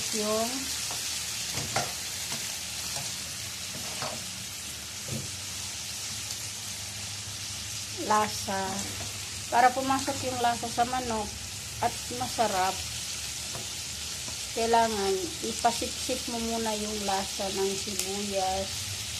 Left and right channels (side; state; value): both; identical; correlation 1.00